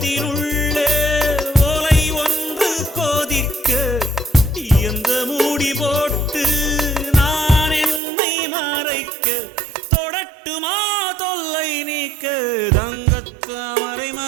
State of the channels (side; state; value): left; drops out; at 8.0 s